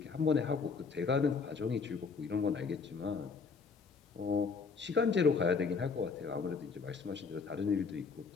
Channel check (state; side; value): quieter; right; 5.0 dB